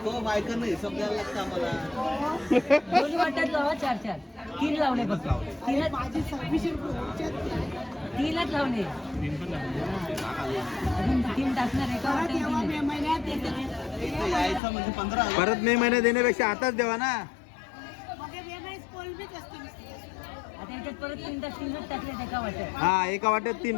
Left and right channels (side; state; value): right; drops out; at 14.6 s